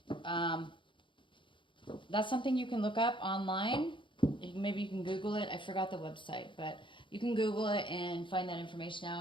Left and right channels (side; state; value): right; late; 0.24 ms